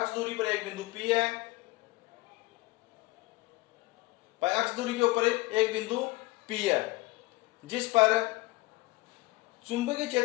दूरी पर एक बिंदु P है। अक्ष दूरी के ऊपर एक बिंदु P है जिस पर चुंबकीय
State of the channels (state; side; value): quieter; right; 21.9 dB